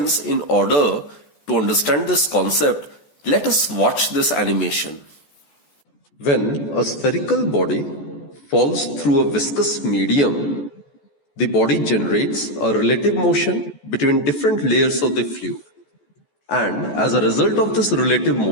in order to understand this concept, let us watch this animation. When a spherical body falls through a viscous medium, the body generates a relative motion between different layers of the fluid. And as a result of this relative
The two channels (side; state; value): right; late; 14 ms